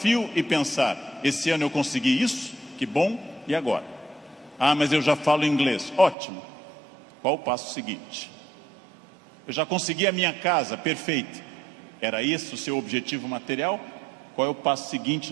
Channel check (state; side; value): drops out; left; at 6.2 s